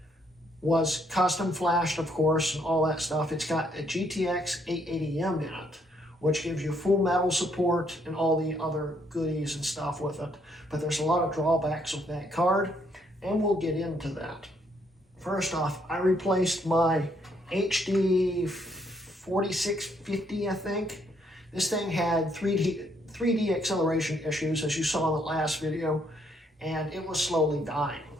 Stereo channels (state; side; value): normal; both; correlation 0.71